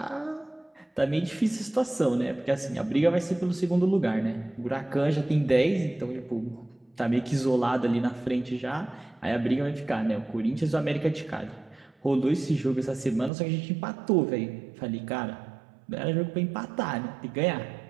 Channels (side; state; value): left; drops out; at 13.3 s